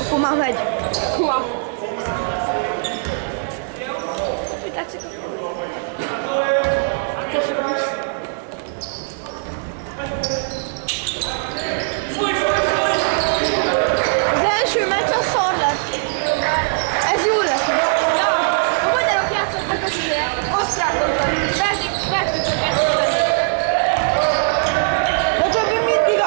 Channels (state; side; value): silent; left; 64 dB below the other